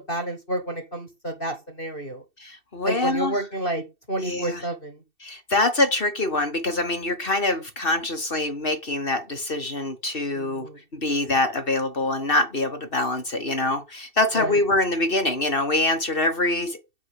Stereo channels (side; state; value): right; late; 2.7 ms